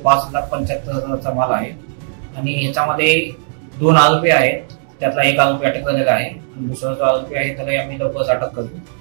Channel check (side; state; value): left; silent; 64 dB below the other